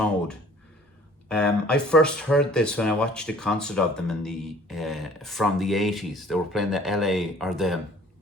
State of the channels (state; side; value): normal; both; correlation 0.53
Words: I first heard this when I watched a concert of them in the from the 80s. They were playing the LA or the